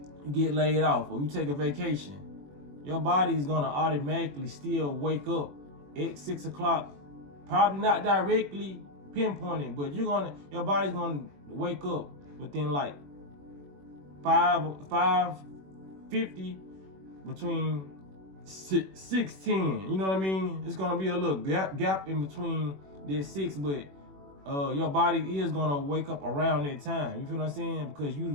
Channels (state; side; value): late; left; 21 ms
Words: you get laid off, or you take a vacation, your body is gonna automatically still wake up at 6 o'clock. Probably not directly pinpointed, but your body's gonna wake up within like 5:50, between 6:10. You know what I mean? It's gonna be a little gap in between that 6, but your body is gonna wake up around that time. You feel what I'm saying? Because